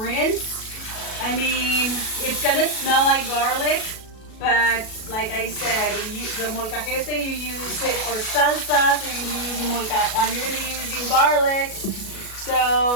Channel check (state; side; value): late; right; 37 ms